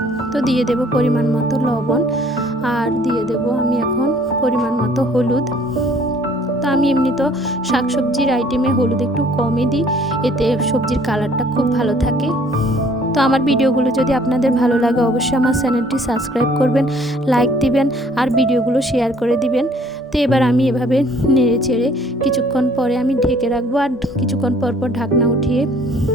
তো দিয়ে দেব পরিমাণ মতো লবণ আর দিয়ে দেব আমি এখন পরিমাণ মতো হলুদ। তো আমি এমনি তো শাকসবজির আইটেমে হলুদ একটু কমই দিই, এতে সবজির কালারটা খুব ভালো থাকে। তো আমার ভিডিওগুলো যদি আপনাদের ভালো লাগে অবশ্যই আমার চ্যানেলটি সাবস্ক্রাইব করবেন, লাইক দিবেন আর ভিডিওগুলো শেয়ার করে দিবেন। তো এবার আমি এভাবে নেড়ে চেড়ে কিছুক্ষণ পরে আমি ঢেকে রাখবো আর কিছুক্ষণ পর ঢাকনা উঠিয়ে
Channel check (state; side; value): normal; both; correlation 0.58